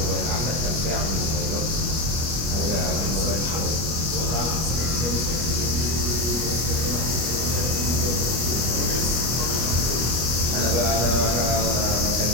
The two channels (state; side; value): late; left; 25 ms